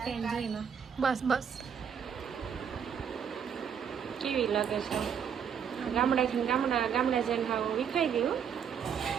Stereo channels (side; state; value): left; quieter; 7.6 dB